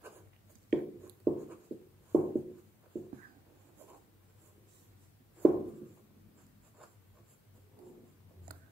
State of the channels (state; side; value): normal; both; correlation 0.90